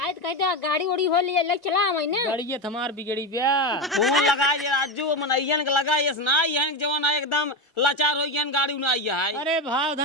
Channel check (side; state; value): both; normal; correlation 0.15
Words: तो कहते गाड़ी उड़ी हो लिया लग चला हमारी ना। गाड़ी हमार बिगड़ी ब्या। फोन लगा ये राजू मनैयन के लगा ये ना ये जवान है एकदम लाचार हो गया गाड़ी उना आइया है। अरे भाव